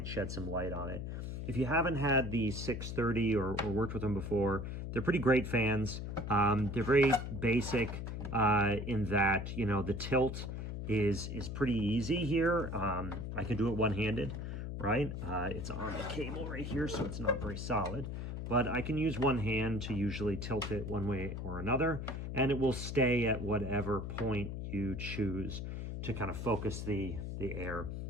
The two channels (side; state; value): left; noise; hum, 5 dB below the sound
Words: shed some light on it. If you haven't had the 630 or worked with them before, they're pretty great fans. They're very basic in that, you know, the tilt is pretty easy here. I can do it one-handed, right? It's on the cable right here, so it's not very solid. But I can use one hand to usually tilt it one way or another, and it will stay at whatever point you choose to kind of focus the air.